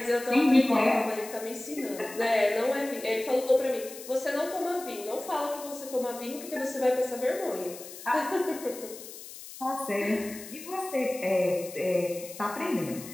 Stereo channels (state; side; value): noise; left; hiss, 14 dB below the sound